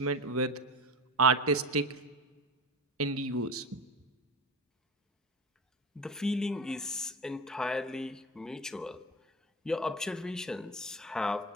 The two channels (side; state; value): both; normal; correlation 0.27